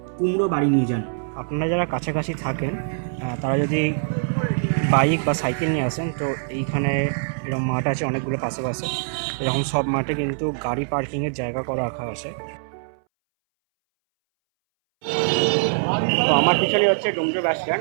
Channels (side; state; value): left; silent; 62 dB below the other